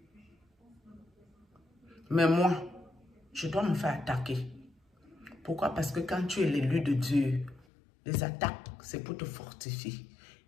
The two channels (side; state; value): right; drops out; at 7.7 s